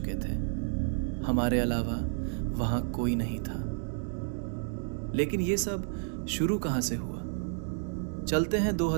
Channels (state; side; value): silent; left; digital silence